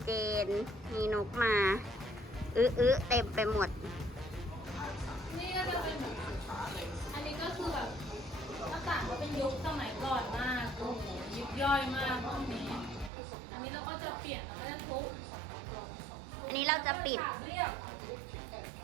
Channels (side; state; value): left; drops out; at 13.1 s